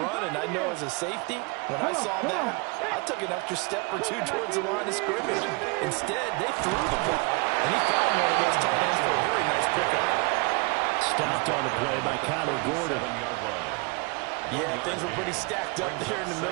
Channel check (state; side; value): quieter; left; 29.3 dB